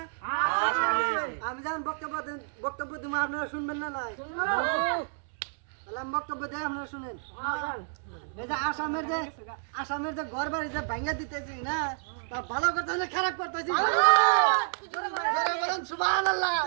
আমি যেমন বক্তব্য দিব আপনারা শুনবেন না? তাহলে আমি বক্তব্য দিয়ে আপনারা শুনেন। এই যে আসামের যে ঘর বাড়ি যে ভাঙা দিতেছি না, তা ভালো করতেছি না খারাপ করতেছি? বলেন সুবহানাল্লাহ।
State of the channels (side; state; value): left; silent; 58 dB below the other